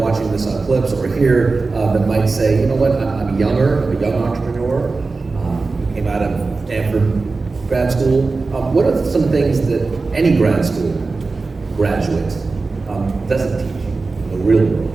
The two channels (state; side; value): quieter; left; 3.9 dB